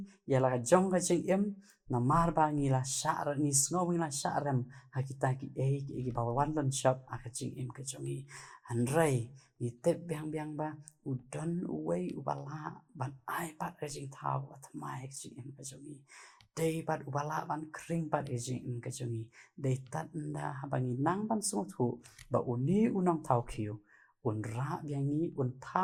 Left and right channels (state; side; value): identical; both; correlation 1.00